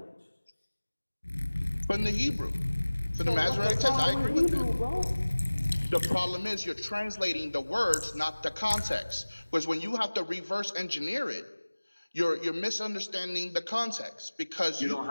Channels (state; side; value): inverted; both; correlation -1.00